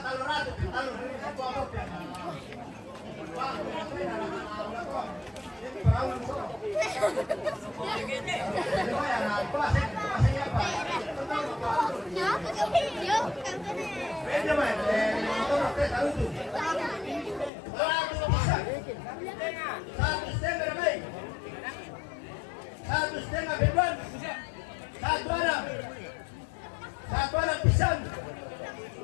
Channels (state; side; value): drops out; right; at 17.5 s